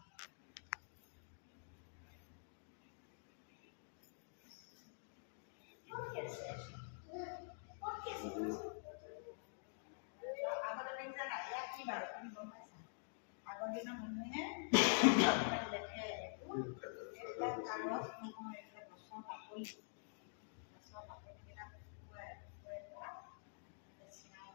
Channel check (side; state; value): right; silent; digital silence